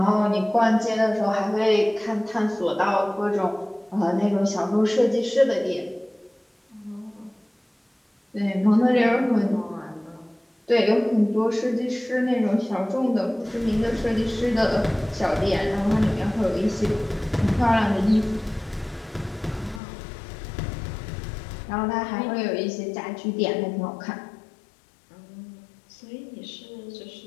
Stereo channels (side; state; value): right; drops out; at 19.8 s